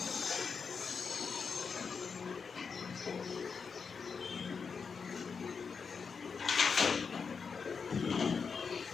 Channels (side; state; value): right; quieter; 5.6 dB